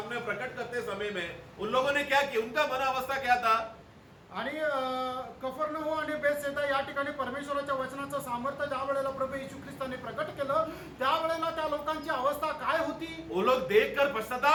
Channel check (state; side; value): identical; both; correlation 1.00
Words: प्रकट करते समय में उन लोगों ने क्या किया? उनका मन अवस्था क्या था? आणि कफरनहूम आणि बेथसेदा या ठिकाणी परमेश्वराच्या वचनाचं सामर्थ्य ज्या वेळेला प्रभू येशू ख्रिस्ताने प्रकट केलं त्यावेळेला त्या लोकांची अवस्था काय होती? वो लोग देखकर